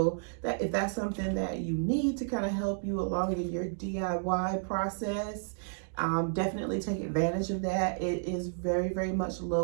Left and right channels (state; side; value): silent; left; digital silence